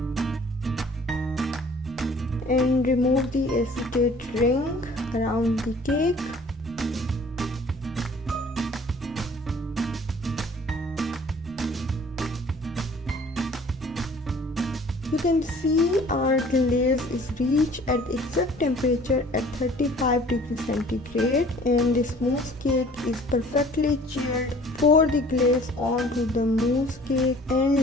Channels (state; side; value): normal; both; correlation 0.51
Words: And remove the acetate ring around the cake. You can see our glaze is reached at the exact temperature at 35 degrees centigrade, and this mousse cake is perfectly chilled. Pour the glaze onto the mousse cake